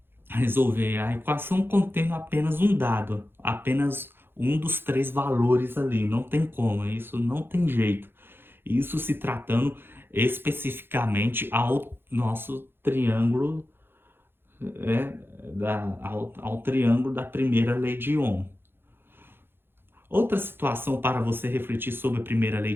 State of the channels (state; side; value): late; left; 0.10 ms